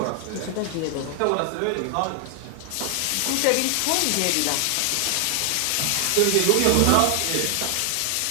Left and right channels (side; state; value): both; different; correlation 0.00